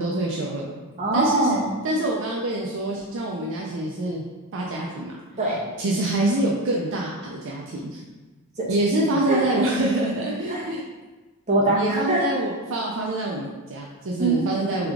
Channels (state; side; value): normal; both; correlation 0.17